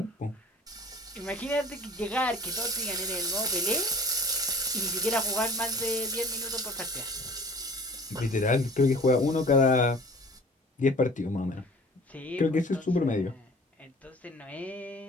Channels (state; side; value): normal; both; correlation 0.47